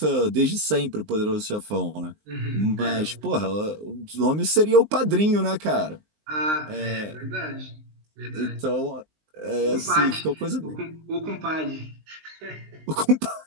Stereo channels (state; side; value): late; left; 19 ms